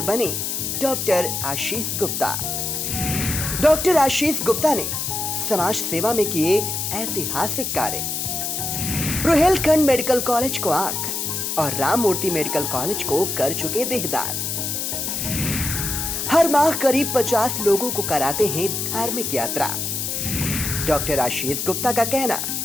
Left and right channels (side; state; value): left; noise; hiss, 2 dB below the sound